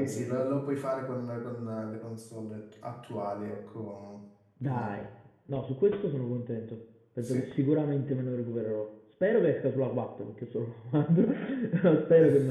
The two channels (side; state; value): both; identical; correlation 1.00